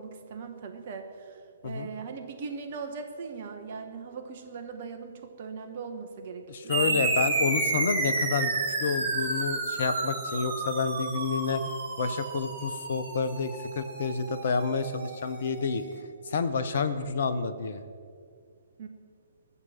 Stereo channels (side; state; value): both; inverted; correlation -0.56